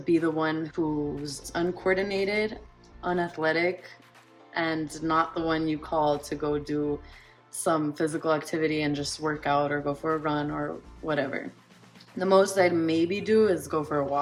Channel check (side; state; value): both; identical; correlation 1.00